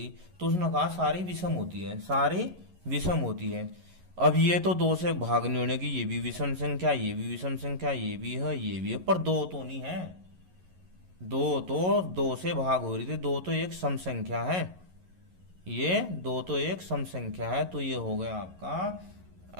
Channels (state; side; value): late; left; 11 ms